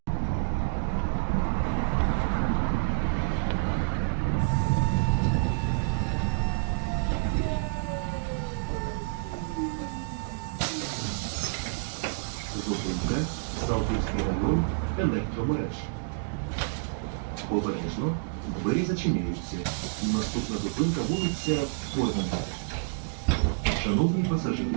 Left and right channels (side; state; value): left; silent; digital silence